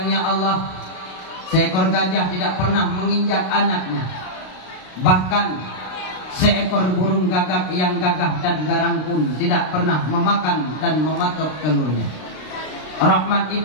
Allah, seekor gajah tidak pernah menginjak anaknya. Bahkan seekor burung gagak yang gagah dan garang pun tidak pernah memakan dan mematok telurnya. Rahmat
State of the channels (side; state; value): right; late; 32 ms